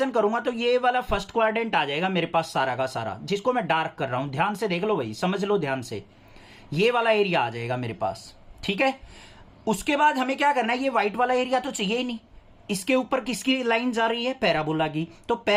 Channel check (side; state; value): both; identical; correlation 1.00